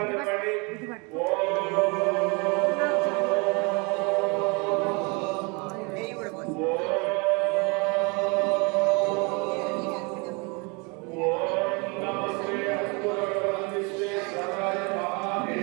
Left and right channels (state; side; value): quieter; left; 30.5 dB